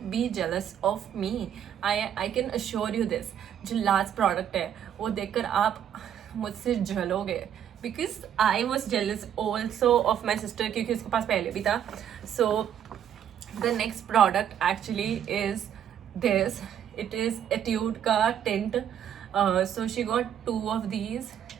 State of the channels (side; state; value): left; quieter; 9.5 dB